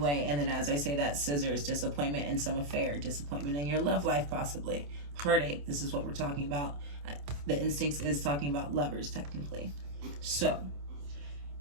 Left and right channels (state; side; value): late; left; 28 ms